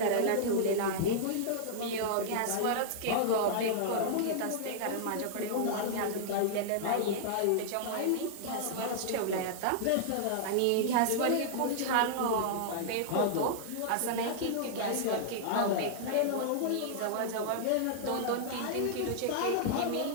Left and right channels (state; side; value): different; both; correlation -0.01